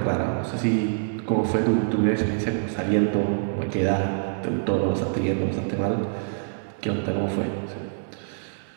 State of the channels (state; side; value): silent; left; digital silence